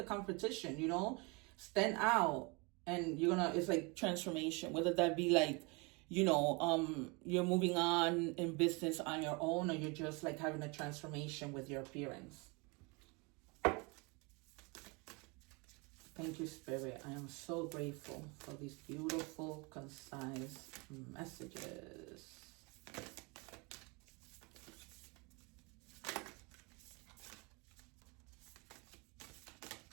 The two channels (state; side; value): quieter; left; 29.2 dB